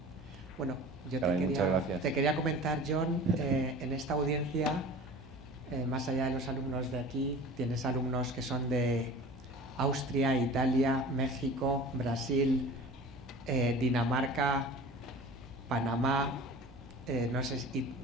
Bueno, yo te quería comentar, John, en esta audiencia, más allá de los alumnos de aquí, tienes alumnos que son de Austria, Italia, México, Brasil, Dinamarca, Panamá, no sé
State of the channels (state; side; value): normal; both; correlation 0.40